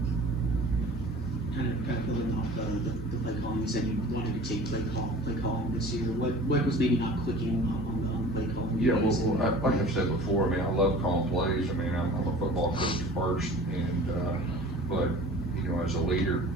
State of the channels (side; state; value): both; normal; correlation 0.43